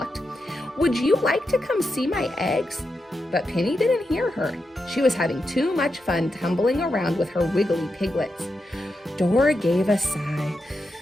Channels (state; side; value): normal; both; correlation 0.87